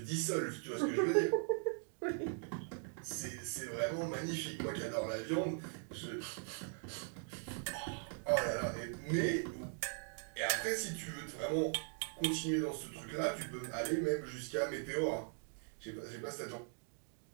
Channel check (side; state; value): left; silent; 51 dB below the other